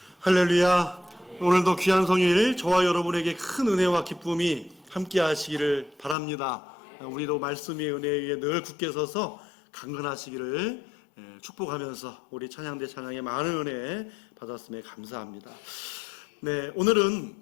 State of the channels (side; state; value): right; drops out; at 6.2 s